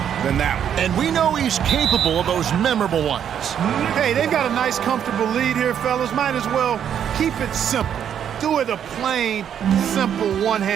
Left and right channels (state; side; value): quieter; left; 9.0 dB